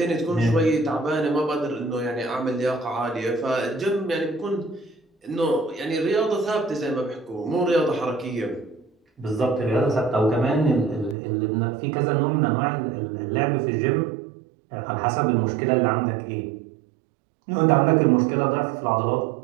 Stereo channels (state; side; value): drops out; left; at 11.2 s